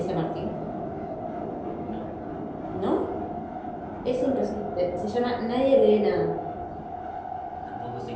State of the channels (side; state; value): both; identical; correlation 1.00